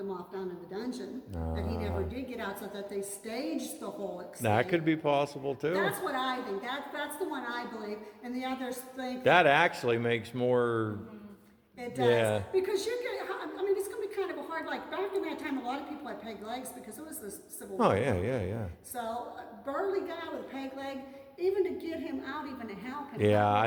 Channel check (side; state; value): both; identical; correlation 1.00